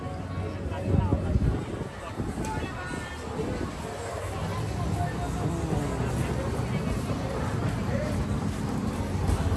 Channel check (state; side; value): identical; both; correlation 1.00